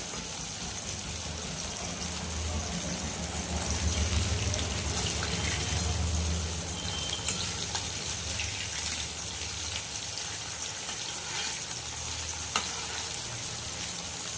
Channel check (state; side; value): identical; both; correlation 1.00